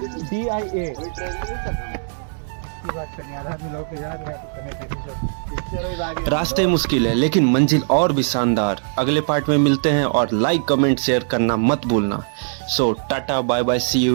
DIA की बात करनी आधा आदमी लोग तो याद है करने रास्ते मुश्किल है लेकिन मंजिल और भी शानदार। अगले पार्ट में मिलते हैं और लाइक कमेंट शेयर करना मत भूलना। So tata bye bye, see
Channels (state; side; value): silent; left; 65 dB below the other